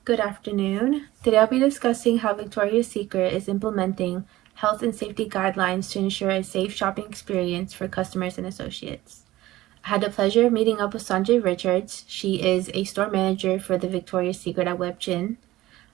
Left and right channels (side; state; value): left; quieter; 16.8 dB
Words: Good afternoon. Today I'll be discussing how Victoria's Secret is implementing health and safety guidelines to ensure a safe shopping experience for customers and associates. I had the pleasure of meeting up with Sanjay Richards. She is a store manager for the Victoria's Secret at WebGen,